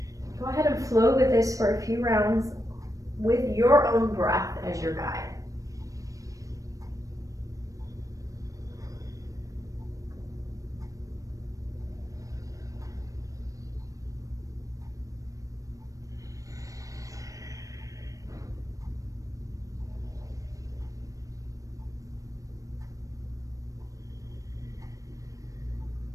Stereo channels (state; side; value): late; left; 0.16 ms